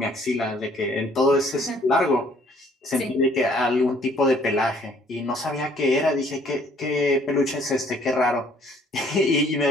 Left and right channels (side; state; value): both; normal; correlation 0.60